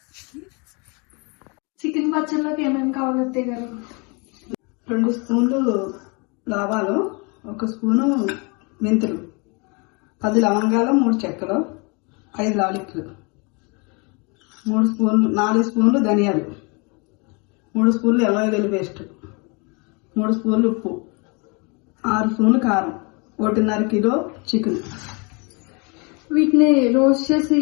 చికెన్ పచ్చడిలోకి ఏమేమి కావాలి అత్తయ్య గారు? 2 స్పూన్లు ఆవాలు, 1 స్పూను మెంతులు, 10 లవంగాలు, 3 చెక్కలు, 5 లాలిక్లు, 4 స్పూన్లు ధనియాలు, 3 స్పూన్లు అల్లం వెల్లుల్లి పేస్ట్, 3 స్పూన్లు ఉప్పు, 6 స్పూన్లు కారం, 1.5 కిలో చికెన్. వీటిని రోస్ట్ చేసి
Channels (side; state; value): right; quieter; 31.2 dB